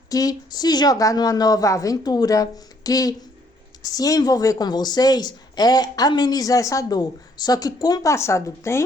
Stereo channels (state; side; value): normal; both; correlation 0.66